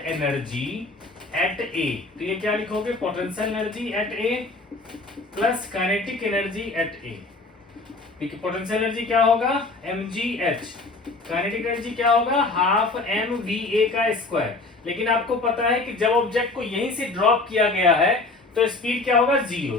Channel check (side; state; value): right; quieter; 3.4 dB